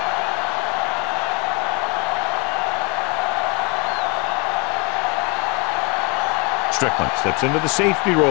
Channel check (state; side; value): quieter; right; 29.0 dB